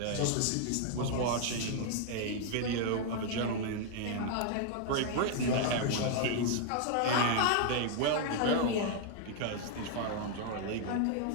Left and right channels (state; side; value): different; both; correlation 0.00